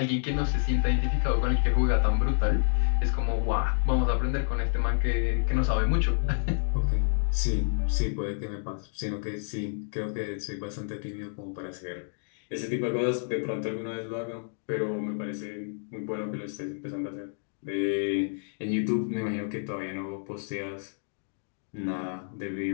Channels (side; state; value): right; silent; digital silence